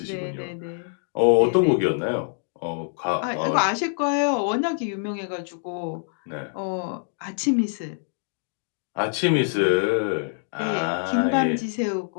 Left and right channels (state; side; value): silent; right; 62 dB below the other